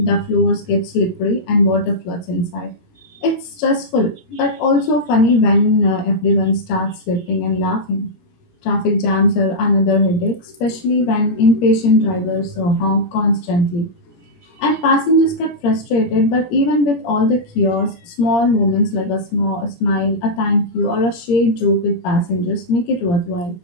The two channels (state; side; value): late; right; 17 ms